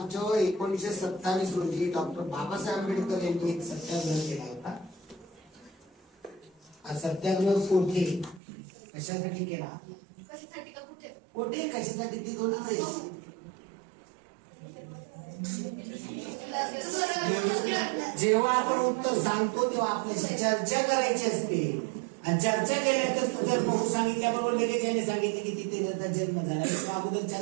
1927 रोजी डॉक्टर बाबासाहेब आंबेडकर यांनी एक सत्याग्रह केला होता. हा सत्याग्रह कोठे कशासाठी केला? कोठे कशासाठी ती दोन जेव्हा आपण उत्तर सांगतो तेव्हा आपल्याशी चर्चा करायची असते. आणि चर्चा केल्यानंतर तू जर बघू सांगितल्याबरोबर लगेच याने सांगितले की तिथे त्याचा जन्म झाला, किंवा अगोदर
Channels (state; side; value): drops out; left; at 8.4 s